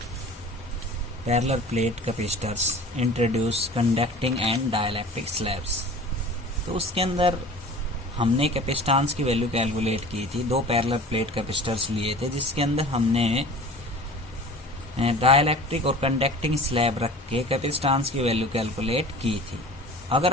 parallel plate capacitors, introduce conducting and dielectric slabs. तो उसके अंदर हमने capacitance की value calculate की थी। दो parallel plate capacitors लिए थे जिसके अंदर हमने डाइलेक्ट्रिक और कंडक्टिंग स्लैब रख के कैपेसिटेंस की वैल्यू कैलकुलेट की थी।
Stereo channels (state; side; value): normal; both; correlation 0.41